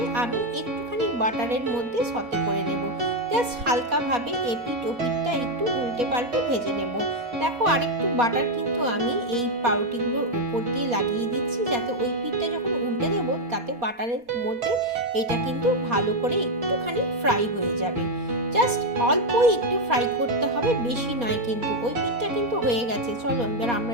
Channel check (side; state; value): left; late; 4.2 ms